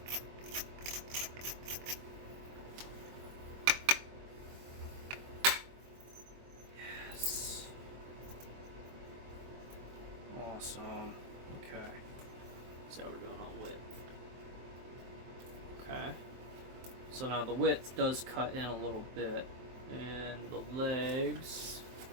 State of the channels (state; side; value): late; left; 23 ms